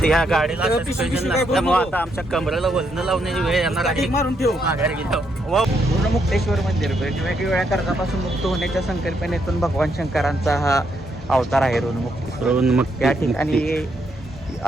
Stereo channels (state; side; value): normal; both; correlation 0.77